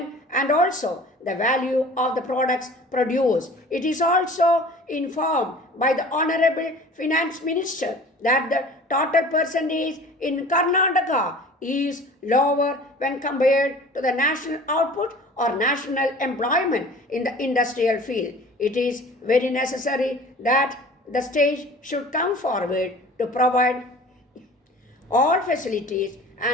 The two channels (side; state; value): both; normal; correlation 0.44